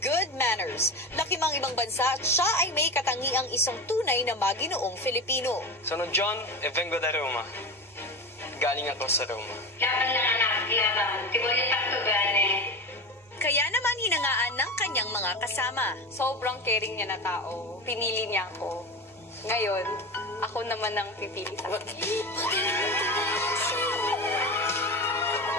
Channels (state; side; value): normal; both; correlation 0.26